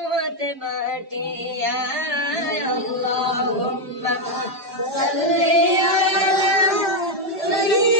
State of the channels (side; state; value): both; normal; correlation 0.03